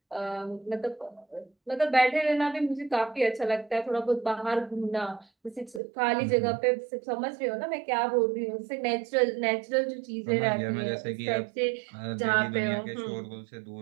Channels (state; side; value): drops out; left; at 5.8 s